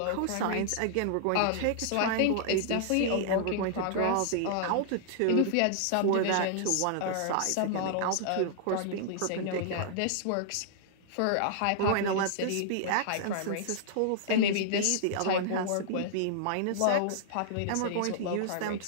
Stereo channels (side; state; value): both; different; correlation -0.01